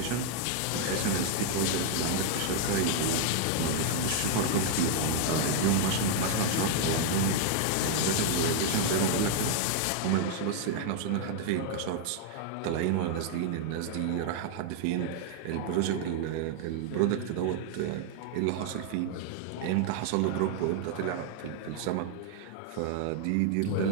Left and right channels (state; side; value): different; both; correlation 0.00